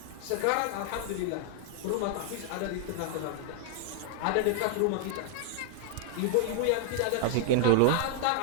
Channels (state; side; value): different; both; correlation -0.01